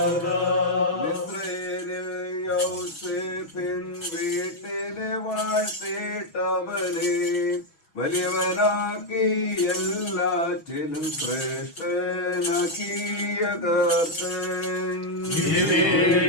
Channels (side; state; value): right; late; 6.1 ms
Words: വീട്ടിലെ വാഴ്ത്തേട്ടവനെ വലിയവനാക്കി എല്ലാറ്റിലും ശ്രേഷ്ഠനാക്കിയ കർത്തൻ.